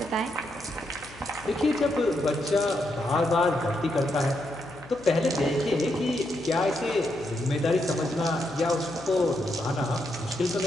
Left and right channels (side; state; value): left; noise; hum, 20 dB below the sound